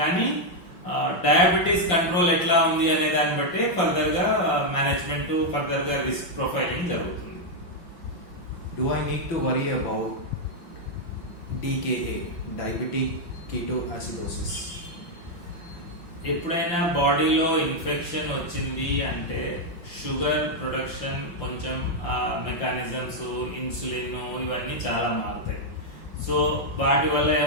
డయాబెటీస్ కంట్రోల్ ఎట్లా ఉంది అనే దాన్ని బట్టి ఫర్దర్ గా మేనేజ్మెంట్ ఫర్దర్ గా రిస్క్ ప్రొఫైలింగ్ జరుగుతుంది. Do I need to worry about DKA, diabetic ketoacidosis? ఎప్పుడైనా బాడీలో ఇన్ఫెక్షన్ వచ్చింది అంటే షుగర్ ప్రొడక్షన్ కొంచెం మెకానిజమ్స్ ఇన్సులిన్ ఇవన్నీ చాలా మారుతాయి. సో వాటి వల్ల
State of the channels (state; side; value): late; right; 5.7 ms